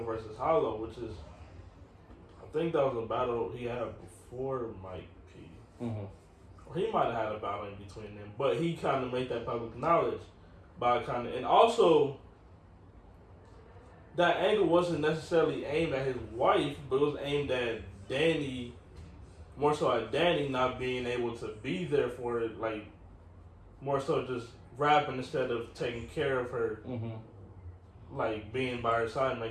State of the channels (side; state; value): both; identical; correlation 1.00